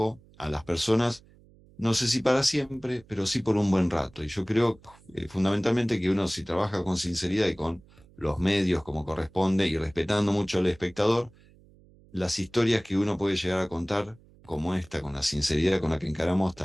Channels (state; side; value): noise; right; hum, 27 dB below the sound